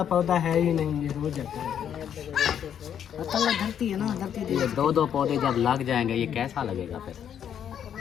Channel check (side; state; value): right; quieter; 9.0 dB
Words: पौधा है ही नहीं, ये रोज जाता है। धरती है ना धरती ये 2-2 पौधे जब लग जाएंगे ये कैसा लगेगा फिर?